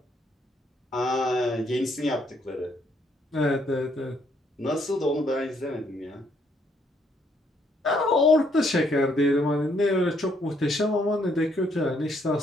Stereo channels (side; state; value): both; normal; correlation 0.70